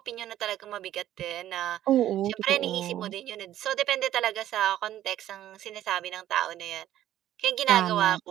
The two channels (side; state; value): left; quieter; 12.6 dB